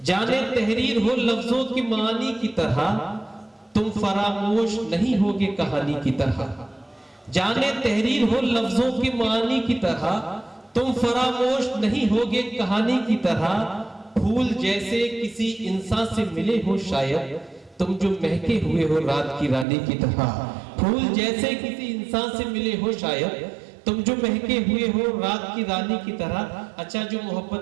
तहरीर हो लफ्जों की मानी की तरह, तुम फरामोश नहीं होगे कहानी की तरह। जाने तहरीर हो लफ्जों की मानी की तरह, तुम फरामोश नहीं होगे कहानी की तरह। फूल जैसे किसी इंसान से मिले हो शायद, तुम जो महके हुए हो रात की रानी की तरह। फूल जैसे किसी इंसान से मिले हो शायद, तुम जो महके हुए हो रात की रानी की तरह। अच्छा, जो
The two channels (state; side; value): drops out; left; at 19.7 s